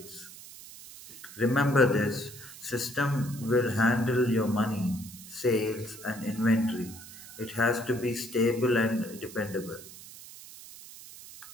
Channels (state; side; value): noise; right; hiss, 16 dB below the sound